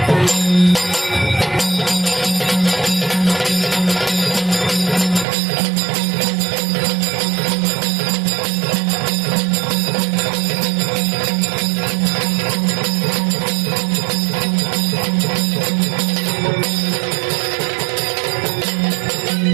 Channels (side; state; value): left; drops out; at 5.2 s